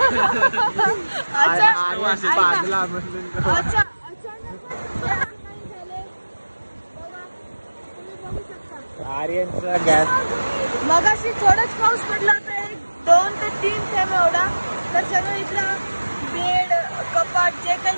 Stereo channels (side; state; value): both; inverted; correlation -1.00